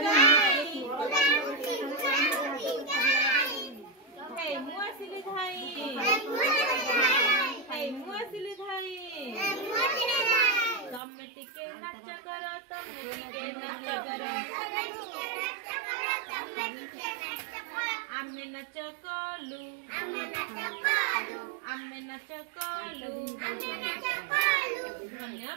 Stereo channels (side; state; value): left; drops out; at 11.0 s